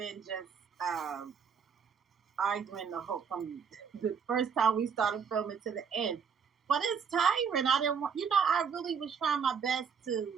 just arguing the whole from the first time we started filming to the end. But it's tiring. I didn't want, I really was trying my best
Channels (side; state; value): left; quieter; 6.7 dB